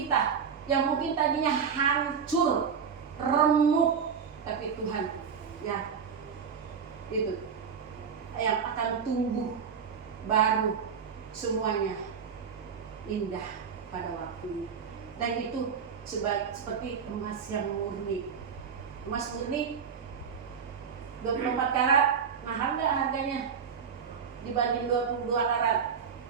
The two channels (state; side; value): quieter; left; 6.7 dB